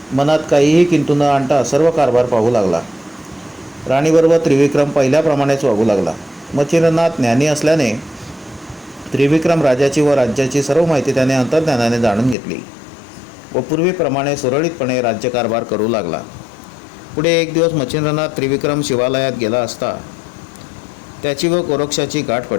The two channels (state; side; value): drops out; right; at 12.4 s